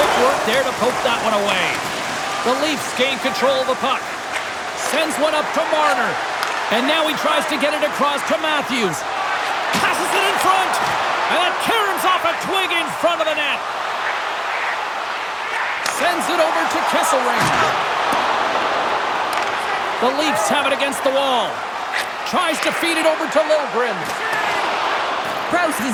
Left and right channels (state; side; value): identical; both; correlation 1.00